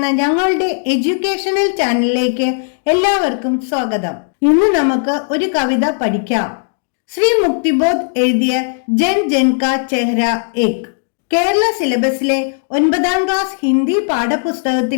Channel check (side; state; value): right; silent; digital silence